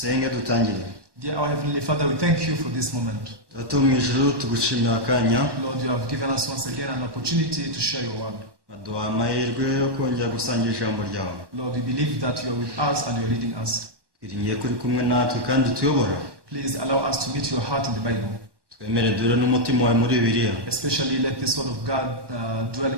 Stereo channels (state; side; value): late; left; 1.1 ms